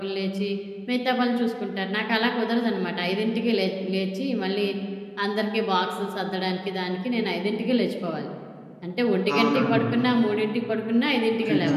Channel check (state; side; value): identical; both; correlation 1.00